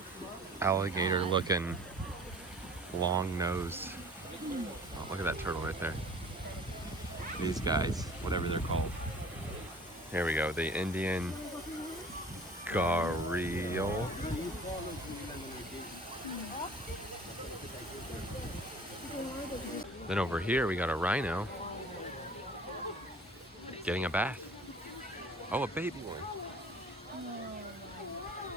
alligator-looking, long-nosed. Oh, look at that turtle right there. These guys, whatever they're called. Here we go, the Indian gharial. Then over here we got a rhino getting a bath. Oh, a baby one.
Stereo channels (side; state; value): both; normal; correlation 0.47